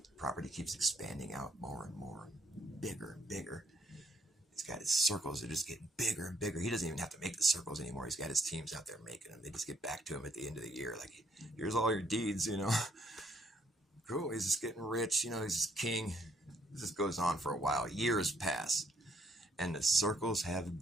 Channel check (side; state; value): both; normal; correlation 0.69